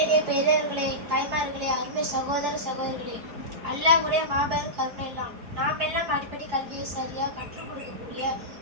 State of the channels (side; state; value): left; late; 4.6 ms